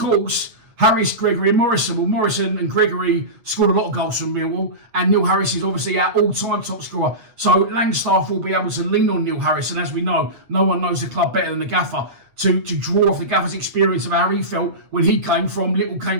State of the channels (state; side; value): late; left; 8.3 ms